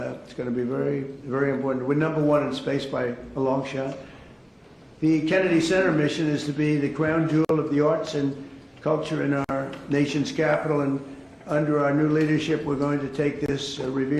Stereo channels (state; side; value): identical; both; correlation 1.00